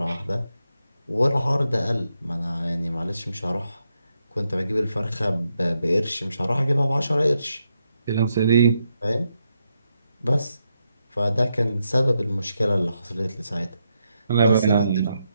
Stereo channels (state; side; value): inverted; both; correlation -0.82